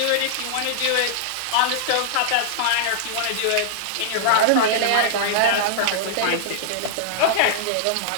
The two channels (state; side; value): different; both; correlation -0.01